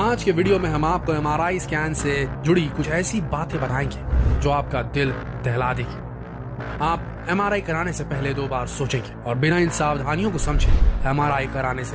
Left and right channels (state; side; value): identical; both; correlation 1.00